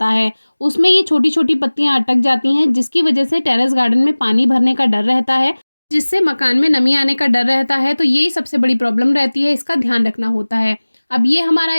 है, उसमें ये छोटी छोटी पत्तियां अटक जाती हैं, जिसकी वजह से टेरेस गार्डन में पानी भरने का डर रहता है, जिससे मकान में नमी आने का डर रहता है। तो यही सबसे बड़ी प्रॉब्लम रहती है, इसका ध्यान रखना होता है। अब ये हमारा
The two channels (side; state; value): both; inverted; correlation -1.00